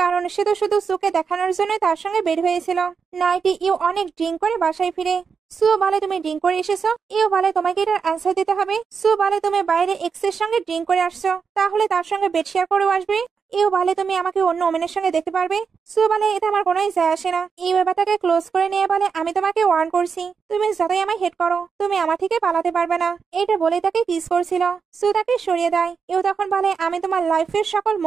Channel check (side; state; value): left; quieter; 5.9 dB